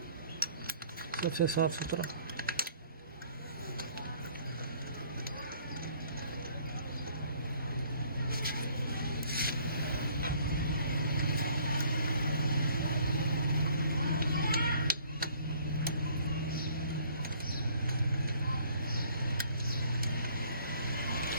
सबसे साफ़ सुथरा।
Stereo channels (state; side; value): inverted; both; correlation -0.58